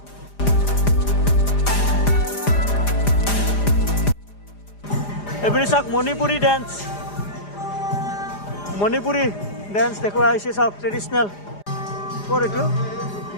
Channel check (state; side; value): late; right; 4.9 ms